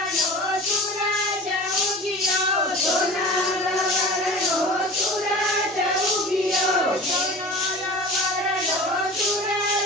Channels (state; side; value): normal; both; correlation 0.37